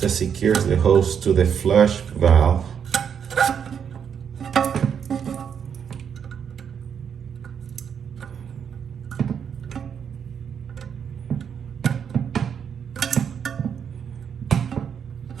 secures the hose to the flush valve.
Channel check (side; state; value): left; quieter; 7.6 dB